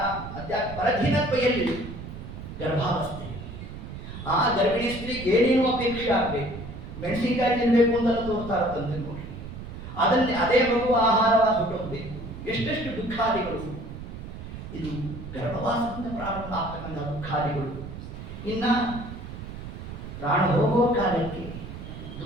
ಪರಧೀನತ್ವ ಎಲ್ಲಿ, ಗರ್ಭಾವಸ್ಥೆ. ಆ ಗರ್ಭಿಣಿ ಸ್ತ್ರೀಗೆ ಏನೇನು ಅಪೇಕ್ಷೆ ಆಗಬೇಕು, ಮೆಣಸಿನಕಾಯಿ ತಿನ್ಬೇಕು ಅಂತೆಲ್ಲ ತೋರ್ತಾ ಇರ್ತಂತೆ ನೋಡಿ. ಅದನ್ನೇ ಅದೇ ಮಗು ಆಹಾರವಾಗಿ ಹೊಟ್ಟೋಗ್ಬೇಕು. ಎಷ್ಟೆಷ್ಟು ದುಃಖಾದಿಗಳು, ಇದು ಗರ್ಭವಾಸದಿಂದ ಪ್ರಾರಂಭ ಆಗ್ತಕ್ಕಂಥ ದುಃಖಾದಿಗಳು. ಇನ್ನ ಪ್ರಾಣ ಹೋಗುವ ಕಾಲಕ್ಕೆ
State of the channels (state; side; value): noise; right; rumble, 10 dB below the sound